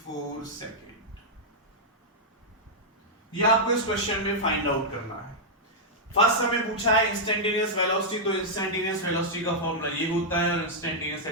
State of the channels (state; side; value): normal; both; correlation -0.06